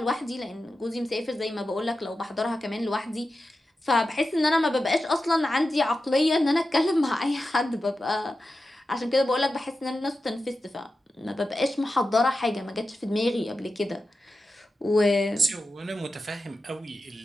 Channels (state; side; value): normal; both; correlation 0.91